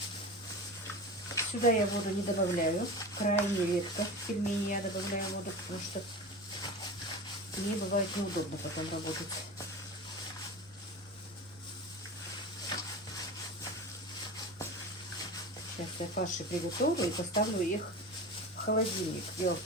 Сюда я воду не добавляю. Крайне редко в пельмени я добавляю воду, потому что мне бывает неудобно потом работать. Сейчас я фарши приготовлю и поставлю их в холодильник. Дело в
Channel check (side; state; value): both; normal; correlation 0.30